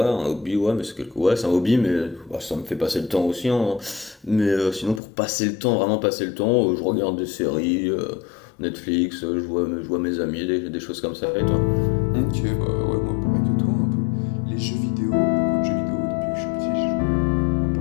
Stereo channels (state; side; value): drops out; right; at 5.0 s